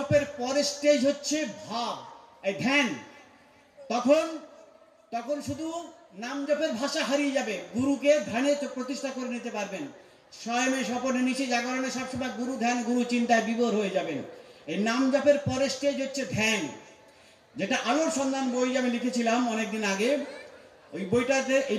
পরের স্টেজ হচ্ছে ভাব, এই ধ্যান। তখন তখন শুধু নাম জপের ভাষা হারিয়ে যাবে, গুরুকে ধ্যানে প্রতিষ্ঠা করে নিতে পারবেন। স্বয়মে স্বপনে নিচে জাগরণে সবসময় গুরু ধ্যান, গুরু চিন্তায় বিভোর হয়ে যাবেন। এই নাম জপের পরের স্টেজ হচ্ছে ধ্যান, যেটা আলোর সন্ধান বই আমি লিখেছিলাম অনেকদিন আগে, ওই বইটাতে এই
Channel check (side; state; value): both; identical; correlation 1.00